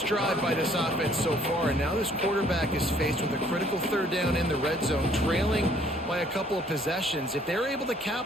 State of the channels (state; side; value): normal; both; correlation 0.61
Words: drive by this offense so far, and now this quarterback is faced with a critical 3rd down in the red zone, trailing by a couple of possessions. If they're able to